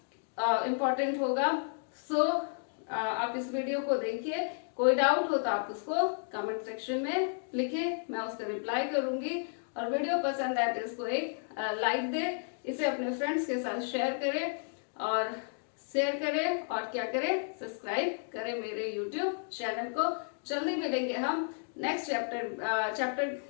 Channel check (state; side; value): silent; right; digital silence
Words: होगा। सो आप इस वीडियो को देखिए, कोई डाउट हो तो आप उसको कमेंट सेक्शन में लिखे, मैं उसका रिप्लाई करूंगी। और वीडियो पसंद आए तो इसको एक लाइक दे, इसे अपने फ्रेंड्स के साथ शेयर करें और क्या करें, सब्सक्राइब करें मेरे यूट्यूब चैनल को। जल्दी मिलेंगे हम नेक्स्ट चैप्टर